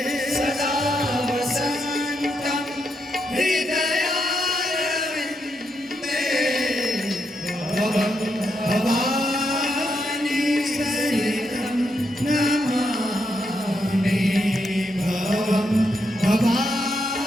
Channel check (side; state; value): both; normal; correlation 0.81